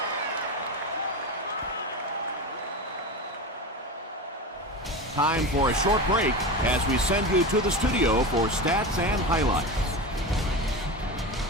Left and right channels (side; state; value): both; normal; correlation 0.24